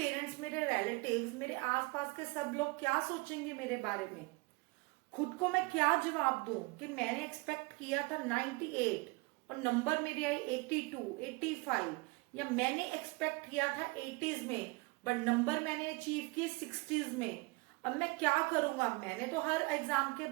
मेरे रिलेटिव्स, मेरे आसपास के सब लोग क्या सोचेंगे मेरे बारे में। खुद को मैं क्या जवाब दूं कि मैंने एक्सपेक्ट किया था 98 और नंबर मेरी आई 82, 85, या मैंने एक्सपेक्ट किया था 80s में बट नंबर मैंने अचीव किए 60s में। अब मैं क्या करूंगा। मैंने तो हर एग्जाम के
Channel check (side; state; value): left; quieter; 26.0 dB